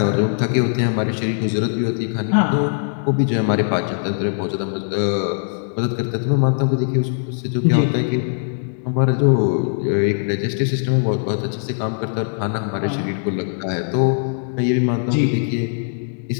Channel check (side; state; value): right; silent; digital silence